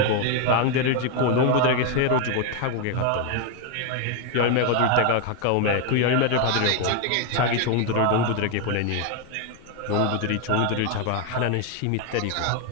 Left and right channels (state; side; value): different; both; correlation 0.01